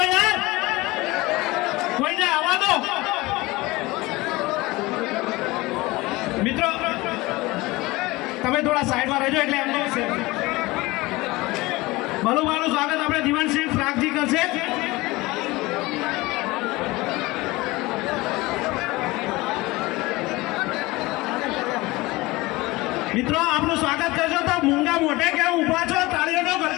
યાર કોઈને આવવા દો મિત્રો તમે થોડા સાઈડમાં રહેજો એટલે એમને બલુભાઈનું સ્વાગત આપણે દીવાનસિંહ પ્રાગજી કરશે મિત્રો આપનું સ્વાગત કરજો તો મૂંગા મોઢે કેમ ઉભા છો તાળીઓનો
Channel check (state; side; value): quieter; right; 21.2 dB